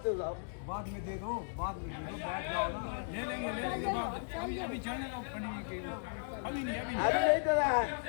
जाओ, बाद में दे दो, बाद जाओ ना, ले लेंगे बाद। अभी चलने दो पंडित के, अभी नहीं दे रहा है।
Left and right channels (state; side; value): silent; right; digital silence